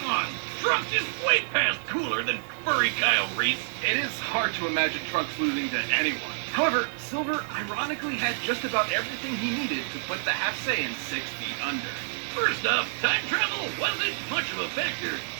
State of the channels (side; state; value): left; silent; digital silence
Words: on! Trunks is way past cooler than furry Kyle Reese. It is hard to imagine Trunks losing to anyone. However, Silver ironically had just about everything he needed to put the half Saiyan 6 feet under. First off, time travel wasn't much of a factor,